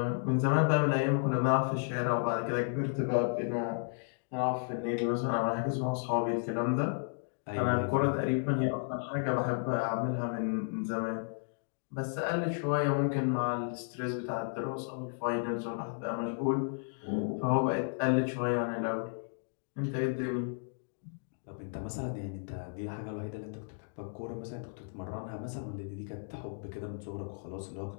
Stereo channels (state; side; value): silent; right; digital silence